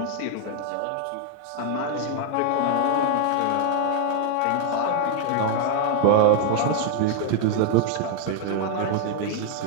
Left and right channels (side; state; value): both; different; correlation 0.00